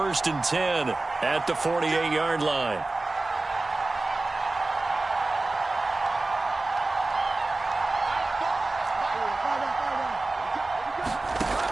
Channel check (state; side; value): quieter; left; 3.2 dB